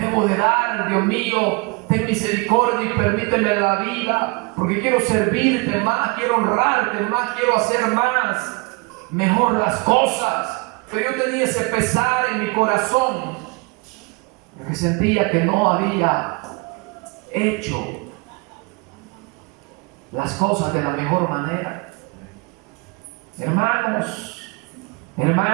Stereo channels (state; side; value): quieter; left; 28.9 dB